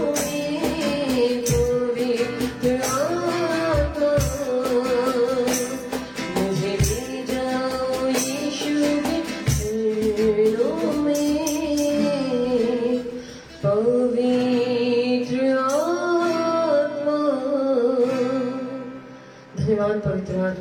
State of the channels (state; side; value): identical; both; correlation 1.00